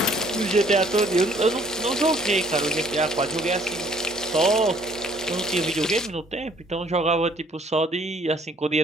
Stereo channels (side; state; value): both; normal; correlation 0.60